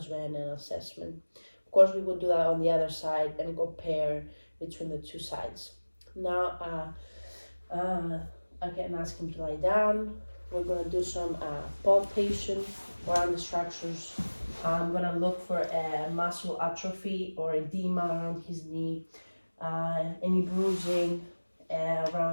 and assessment. Of course, we will do that on the other side and compare between the two sides. Now, I can ask him to lie down. We're going to do some palpation around the structures. I'm going to look for muscle atrophy or edema around his knee, any bruising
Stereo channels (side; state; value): both; inverted; correlation -1.00